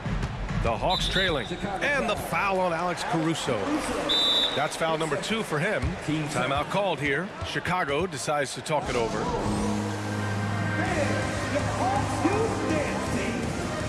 The Hawks trailing. And the foul on Alex Caruso. That's foul number 2 for him. Timeout called here. Chicago decides to talk it over.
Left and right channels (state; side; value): identical; both; correlation 1.00